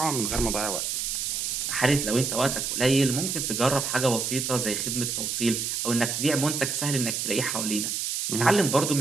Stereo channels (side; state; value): right; noise; hiss, 1 dB below the sound